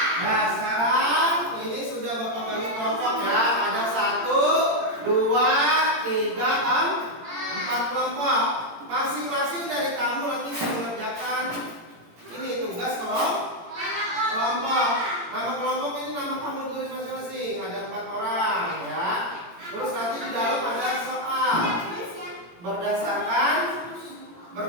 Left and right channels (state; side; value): late; left; 17 ms